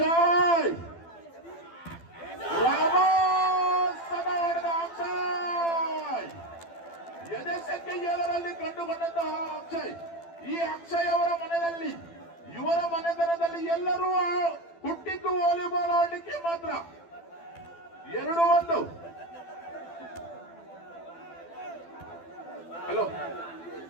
ಅಕ್ಷಯ್ ಎದೆ ಸಂಖ್ಯೆ 7ರಲ್ಲಿ ಕಂಡುಕೊಂಡಂತಹ ಅಕ್ಷಯ್. ಈ ಅಕ್ಷಯ್ ಅವರ ಮನೆಯಲ್ಲಿ, ಇವರ ಮನೆತನದಲ್ಲಿ ಎಲ್ಲರೂ ಹುಟ್ಟಿದ್ದು ವಾಲಿಬಾಲ್ ಆಡಲಿಕ್ಕೆ ಮಾತ್ರ. 2-1. ಹಲೋ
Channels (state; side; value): late; right; 12 ms